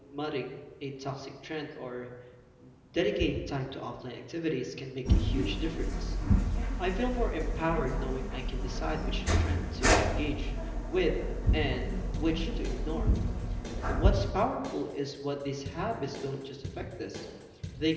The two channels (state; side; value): identical; both; correlation 1.00